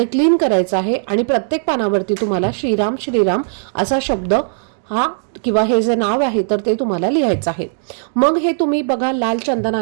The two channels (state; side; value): silent; left; digital silence